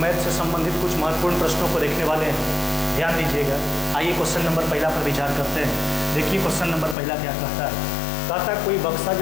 से संबंधित कुछ महत्वपूर्ण प्रश्नों को देखने वाले हैं, ध्यान दीजिएगा। आइए क्वेश्चन नंबर पहला पर विचार करते हैं। देखिए क्वेश्चन नंबर पहला क्या कहता है। कहता है कोई बक्सा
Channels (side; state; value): right; drops out; at 7.0 s